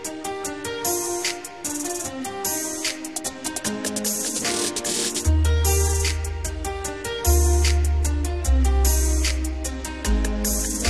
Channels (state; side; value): identical; both; correlation 1.00